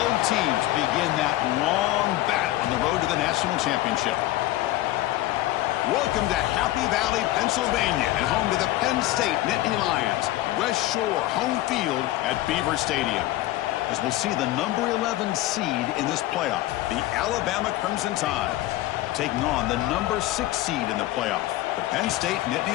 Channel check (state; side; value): quieter; right; 16.1 dB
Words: teams begin that long battle on the road to the national championship. Welcome to Happy Valley, Pennsylvania, and home to the Penn State Nittany Lions. West Shore home field at Beaver Stadium. As we'll see the number 11 seed in this playoff, the Alabama Crimson Tide, taking on the number 6 seed in the playoff, the Penn State